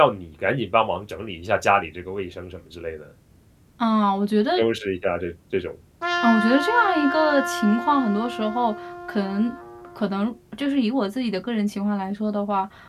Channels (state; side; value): identical; both; correlation 1.00